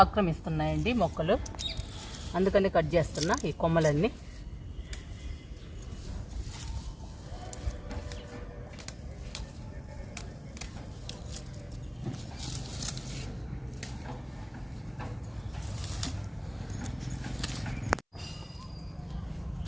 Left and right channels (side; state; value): both; identical; correlation 1.00